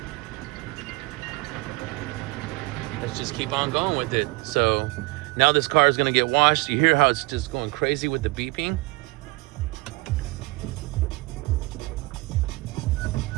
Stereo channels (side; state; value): left; quieter; 23.5 dB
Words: let's just keep on going with it. So now this car is gonna get washed. You hear how it's just going crazy with the beeping?